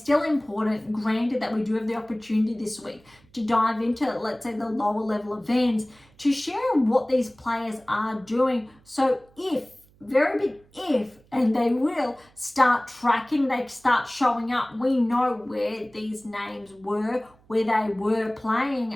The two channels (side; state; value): right; noise; hum, 30 dB below the sound